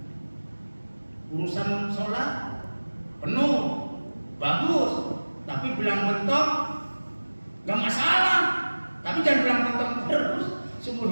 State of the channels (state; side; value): inverted; both; correlation -1.00